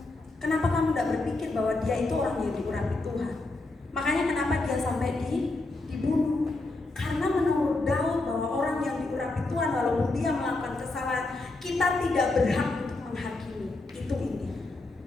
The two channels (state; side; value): quieter; right; 3.1 dB